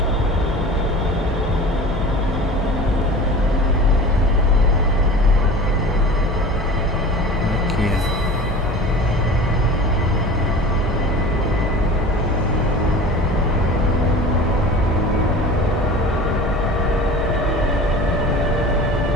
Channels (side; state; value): both; normal; correlation 0.38